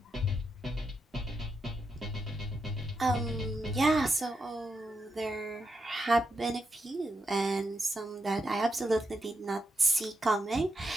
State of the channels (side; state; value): both; normal; correlation 0.84